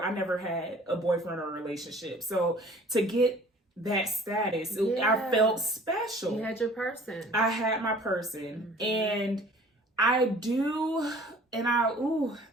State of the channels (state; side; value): normal; both; correlation 0.50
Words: I never had a boyfriend or a relationship. So to get that status, I felt special. You had your person. I had my person. And I